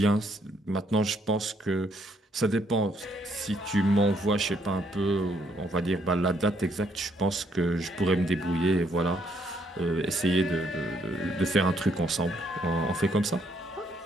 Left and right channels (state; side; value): normal; both; correlation 0.71